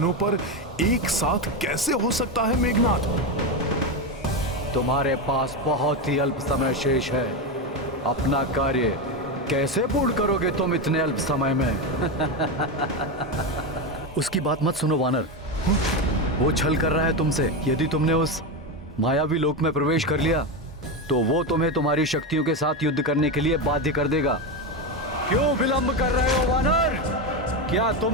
पर एक साथ कैसे हो सकता है मेघनाद? तुम्हारे पास बहुत ही अल्प समय शेष है। अपना कार्य कैसे पूर्ण करोगे तुम इतने अल्प समय में? उसकी बात मत सुनो वानर, वो छल कर रहा है तुमसे। यदि तुमने उस मायावी लोक में प्रवेश कर लिया तो वो तुम्हें तुम्हारी शक्तियों के साथ युद्ध करने के लिए बाध्य कर देगा। क्यों विलंब कर रहे हो वानर? क्या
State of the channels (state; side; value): normal; both; correlation 0.13